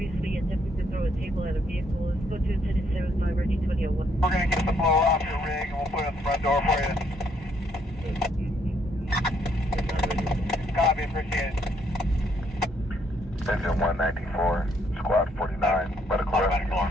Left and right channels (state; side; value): normal; both; correlation 0.71